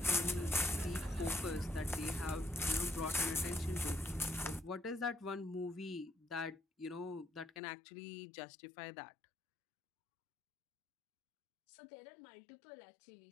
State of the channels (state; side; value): drops out; right; at 7.6 s